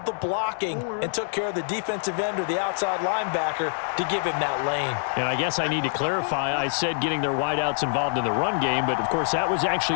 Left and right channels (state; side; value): silent; right; digital silence